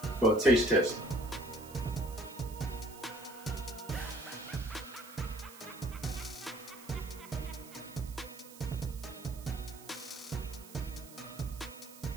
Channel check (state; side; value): noise; right; hiss, 18 dB below the sound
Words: for a taste test.